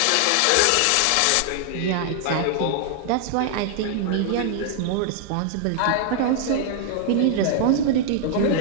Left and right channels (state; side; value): different; both; correlation 0.00